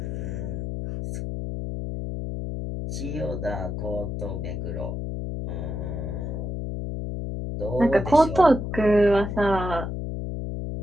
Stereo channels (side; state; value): left; noise; hum, 4 dB below the sound